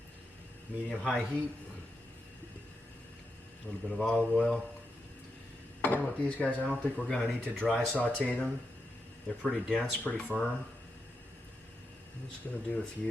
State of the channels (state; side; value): normal; both; correlation 0.86